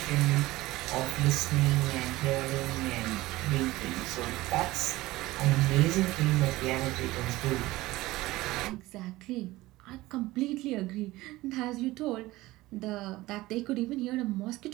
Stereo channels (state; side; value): quieter; left; 18.5 dB